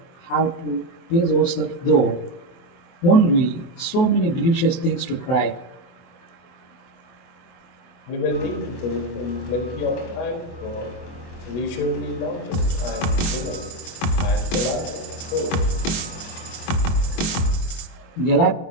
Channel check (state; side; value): late; right; 24 ms